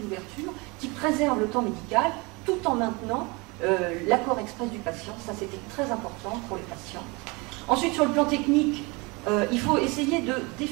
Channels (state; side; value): quieter; left; 27.1 dB